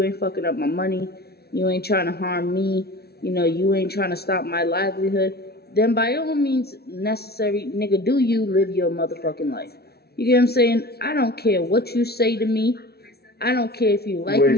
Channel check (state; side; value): late; right; 0.46 ms